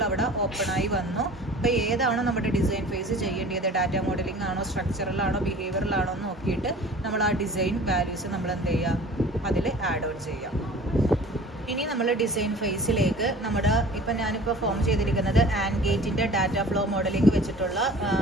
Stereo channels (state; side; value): normal; both; correlation 0.44